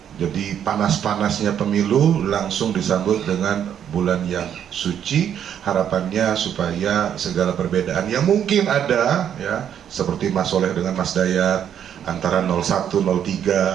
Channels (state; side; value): quieter; left; 9.2 dB